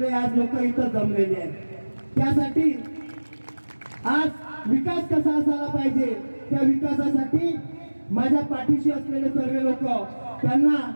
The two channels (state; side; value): inverted; both; correlation -1.00